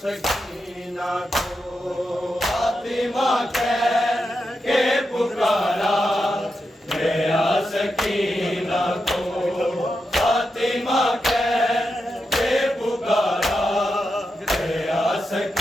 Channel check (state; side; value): normal; both; correlation 0.87